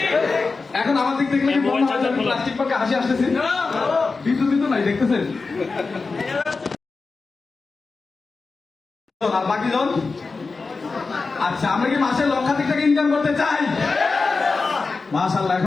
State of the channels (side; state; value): right; quieter; 4.2 dB